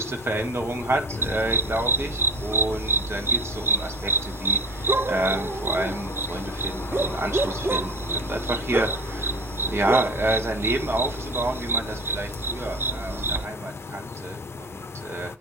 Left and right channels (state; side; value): normal; both; correlation 0.34